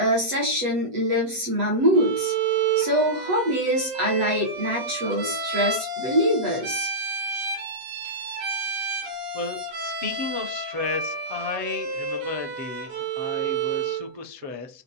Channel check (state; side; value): late; left; 8.0 ms